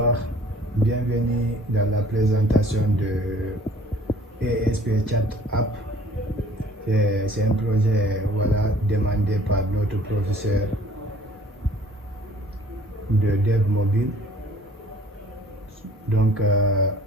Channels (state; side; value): normal; both; correlation 0.54